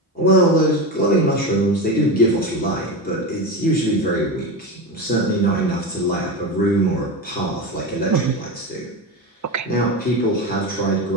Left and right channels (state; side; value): normal; both; correlation 0.21